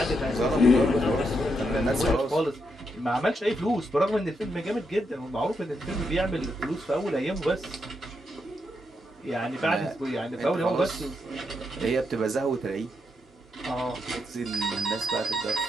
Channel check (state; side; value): normal; both; correlation 0.81